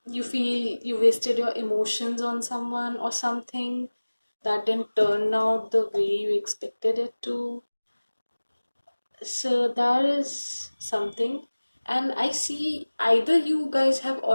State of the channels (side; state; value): both; inverted; correlation -1.00